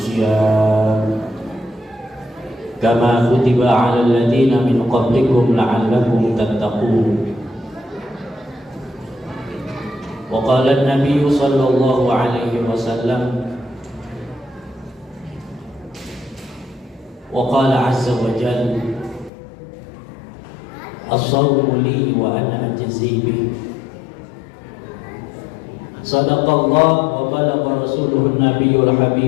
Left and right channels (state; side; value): drops out; right; at 19.3 s